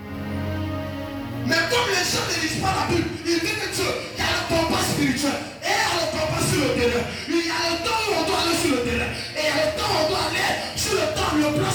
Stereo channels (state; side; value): identical; both; correlation 1.00